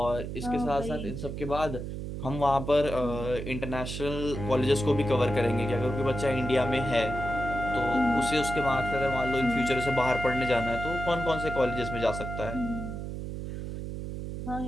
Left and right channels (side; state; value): right; noise; hum, 6 dB below the sound